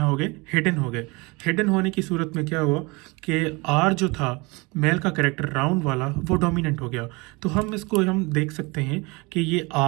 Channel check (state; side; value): quieter; left; 26.2 dB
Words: हो गए, हिडन हो गए। हिडन होने की सूरत में क्या हुआ कि आर जो था मेल का करेक्टर राउंड वाला वो डोमिनेंट हो गया। तो हम इसको हम देख सकते हैं कि ये